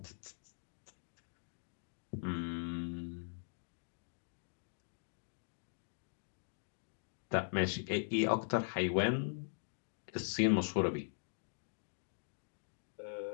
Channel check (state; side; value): silent; right; digital silence